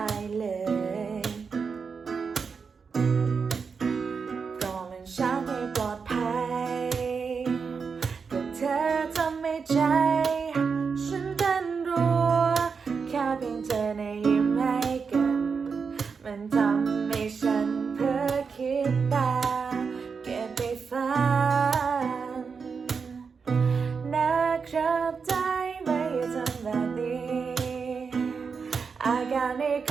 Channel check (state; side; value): quieter; left; 5.5 dB